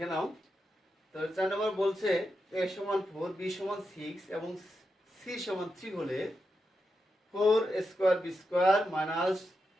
নাও। তো 4 নম্বর বলছে a সমান 4 b সমান 6 এবং c সমান 3 হলে 4 square b square minus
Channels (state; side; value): normal; both; correlation 0.87